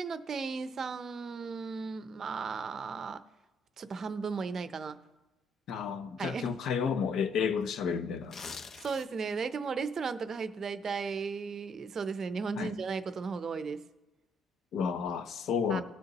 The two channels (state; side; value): normal; both; correlation 0.69